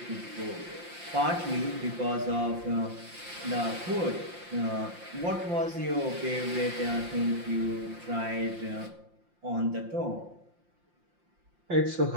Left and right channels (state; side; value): late; left; 5.7 ms